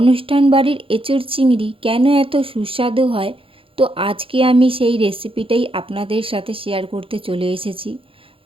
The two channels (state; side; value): late; left; 0.26 ms